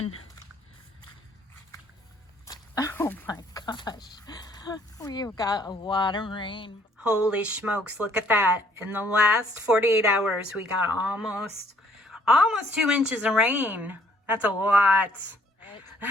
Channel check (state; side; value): normal; both; correlation 0.63